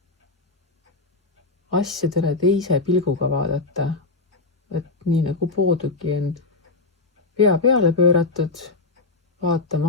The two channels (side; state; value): right; quieter; 3.5 dB